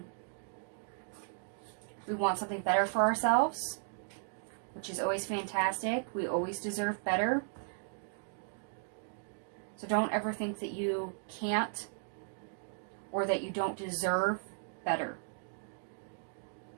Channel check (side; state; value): left; silent; digital silence